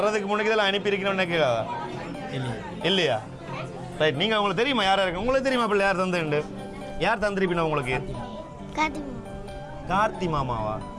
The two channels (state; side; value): identical; both; correlation 1.00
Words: முன்னாடி இதெல்லாம் அனுப்பியிருக்கணும்னு நினைக்கிறதா இல்லையா? ரைட். நீங்கள் உங்களுக்கு தெரியுமா யாரா இருக்கு? உங்களுக்கு தெரியுமா பிள்ளை யார் தந்துண்டு? யார் தந்திருப்பினா உங்களுக்கு? கார்த்தி மாமாவா?